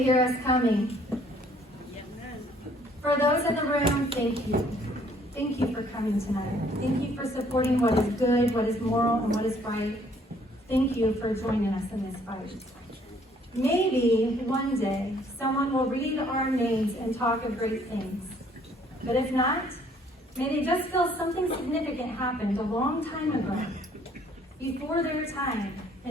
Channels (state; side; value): normal; both; correlation 0.62